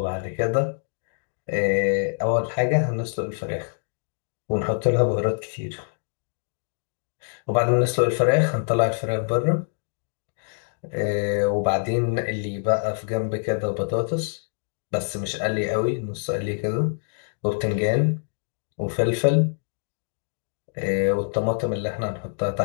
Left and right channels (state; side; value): silent; right; digital silence